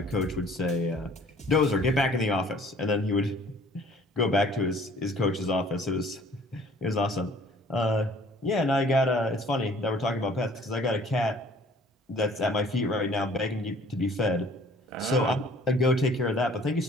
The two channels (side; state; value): both; normal; correlation 0.54